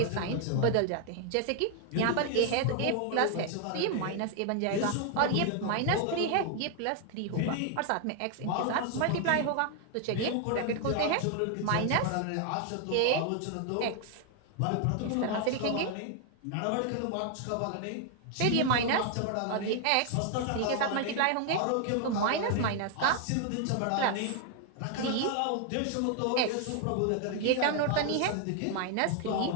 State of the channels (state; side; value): different; both; correlation 0.00